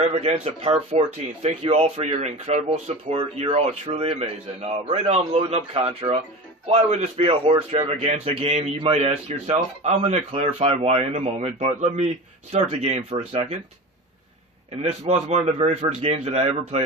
Part 14. Thank you all for your incredible support. You're all truly amazing. Right now I'm loading up Contra. Why would this be a Horror Stravaganza game, you might ask yourself? I'm going to clarify why in a moment, but let me start the game for a second. And this was one of the very first games that I ever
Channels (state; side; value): normal; both; correlation 0.30